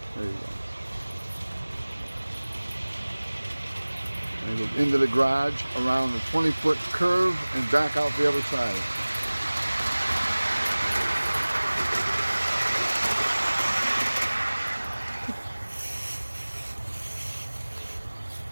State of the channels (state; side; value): inverted; both; correlation -1.00